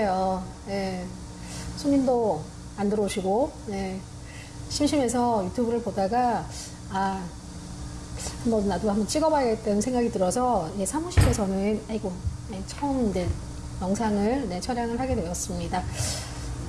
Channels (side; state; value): both; identical; correlation 1.00